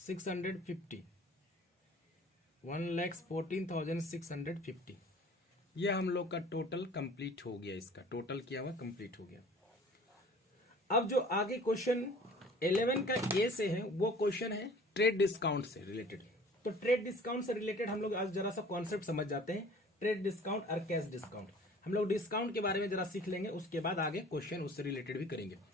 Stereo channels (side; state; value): both; normal; correlation 0.48